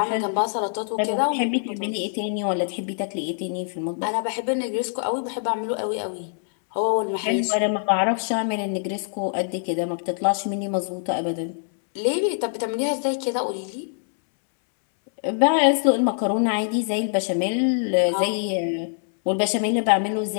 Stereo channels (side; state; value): right; silent; 63 dB below the other